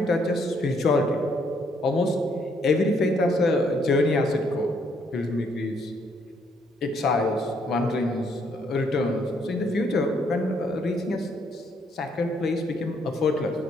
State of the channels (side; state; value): both; normal; correlation 0.70